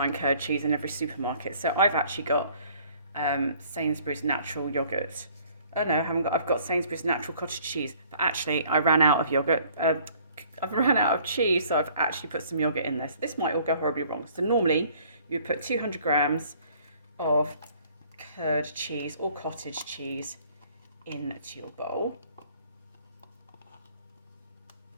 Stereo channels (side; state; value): both; inverted; correlation -0.57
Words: curd cheese in every supermarket, so I've actually got Sainsbury's natural yogurt. Oh no, I've got Sainsbury's natural cottage cheese, but actually I ran out of yogurt. I've run out of cheese, so I've actually put some yogurt in this. This might all go horribly wrong. So normally you would put 200 grams of curd cheese or cottage cheese into your bowl.